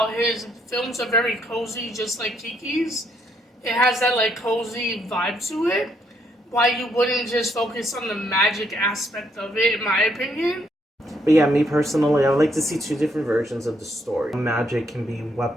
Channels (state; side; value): normal; both; correlation 0.73